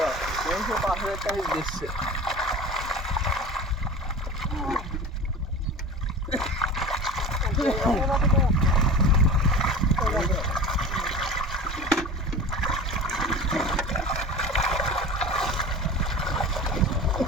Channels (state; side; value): normal; both; correlation 0.34